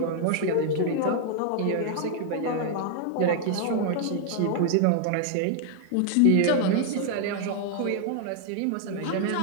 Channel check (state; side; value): different; both; correlation 0.00